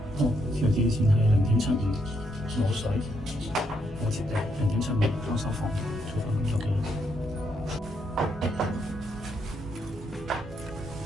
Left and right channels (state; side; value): normal; both; correlation 0.76